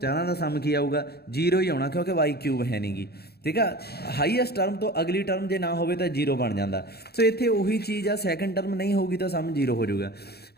चारों का सम की आऊगा 0 ही आना क्योंकि वाई क्यूब है नहीं गी, ठीक है। हाईएस्ट टर्म तो अगली टर्म जो ना हो तो 0 बन जाता। सो इत्थे उही चीज़ आ सैकेंड टर्म नहीं होगी तो सम 0 हो जाऊगा।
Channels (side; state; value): right; late; 0.46 ms